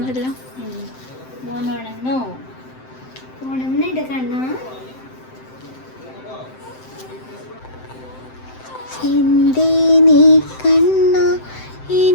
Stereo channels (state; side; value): late; right; 7.7 ms